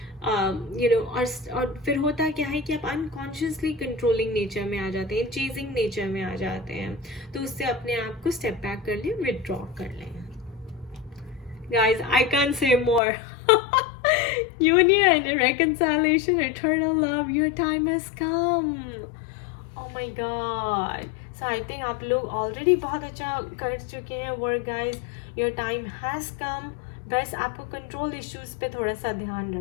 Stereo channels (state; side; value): drops out; right; at 13.0 s